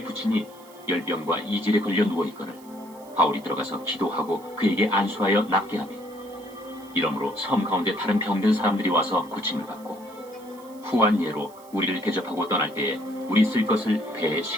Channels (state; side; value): noise; right; hiss, 25 dB below the sound